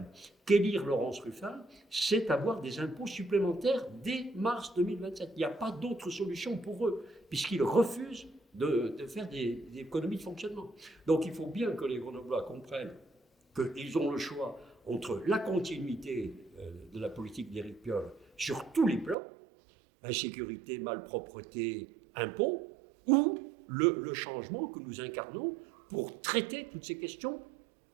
qu'élire Laurence Ruffin, c'est avoir des impôts supplémentaires dès mars 2027. Il n'y a pas d'autre solution pour eux, puisqu'ils refusent de faire des économies de fonctionnement. Donc il faut bien que les Grenoblois comprennent qu'ils ont le choix entre la continuité de la politique d'Éric Piolle sur tous les plans, insécurité, malpropreté, impôts, ou le changement que nous incarnons pour traiter toutes ces questions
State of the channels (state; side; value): drops out; left; at 19.2 s